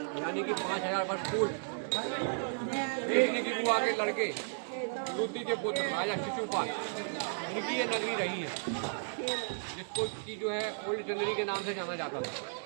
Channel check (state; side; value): silent; left; digital silence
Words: यानी कि 5000 वर्ष पूर्व देखने की बुआ के लड़के रुद्री के पुत्र राजा शिशुपाल, इनकी ये नगरी रही है, जिसको की जो है ओल्ड चंदेरी के नाम से जाना जाता था।